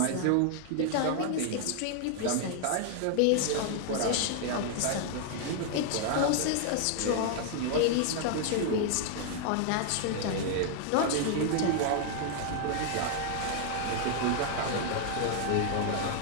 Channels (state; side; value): different; both; correlation 0.00